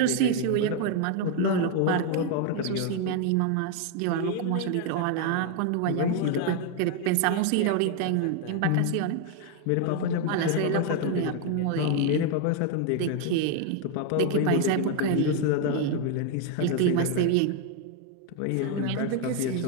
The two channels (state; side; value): different; both; correlation 0.01